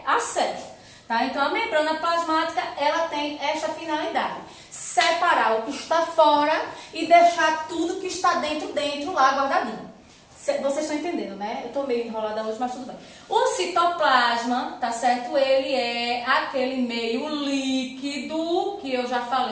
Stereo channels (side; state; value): both; identical; correlation 1.00